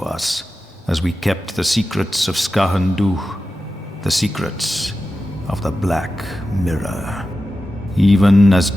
as we kept the secrets of Skahandu, the secrets of the Black Mirror. Even as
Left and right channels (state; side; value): normal; both; correlation 0.93